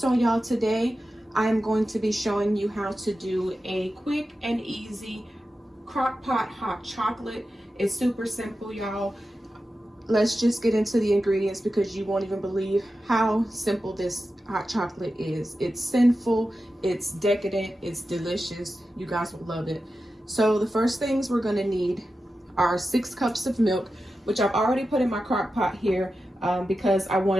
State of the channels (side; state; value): both; normal; correlation 0.92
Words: y'all, today I am going to be showing you how to do a quick and easy Crockpot hot chocolate. It's super simple, y'all. Let's just get into the ingredients because you won't even believe how simple this hot chocolate is. It's sinful, it's decadent, it's delicious. You guys will love it. So the first things we're gonna need are 6 cups of milk, which I've already put in my crock pot here because I